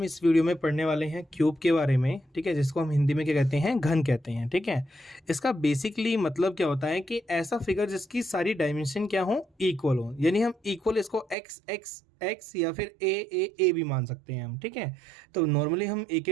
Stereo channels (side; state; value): left; drops out; at 11.4 s